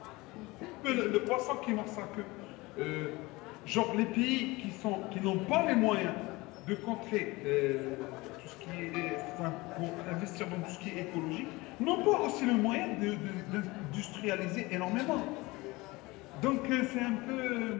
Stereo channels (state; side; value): quieter; right; 22.3 dB